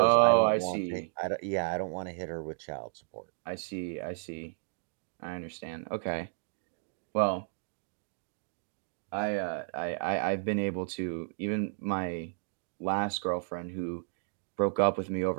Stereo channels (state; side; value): silent; left; digital silence